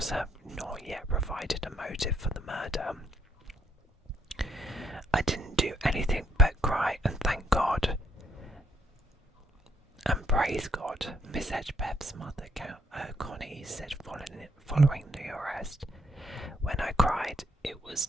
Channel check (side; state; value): both; normal; correlation 0.71